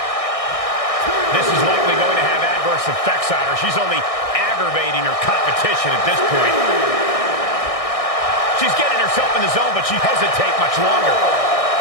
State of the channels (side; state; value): right; late; 1.6 ms